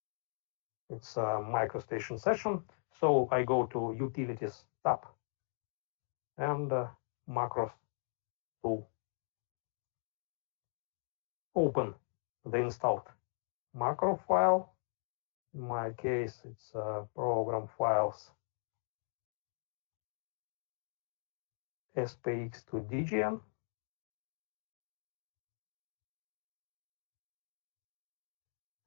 It's a MicroStation session, so I go to Utilities tab and Macros tool. Open the installed macro file. In my case, it's program files SPX to DGN.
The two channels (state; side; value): silent; right; digital silence